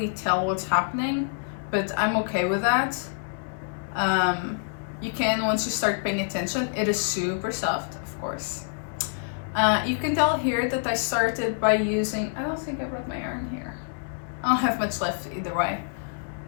tell what's happening, but I'm okay with that. You can once you start paying attention. It is super soft, of course. You can tell here that I started by using, I don't think I brought my yarn here. I don't have much left either way,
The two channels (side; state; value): right; silent; 60 dB below the other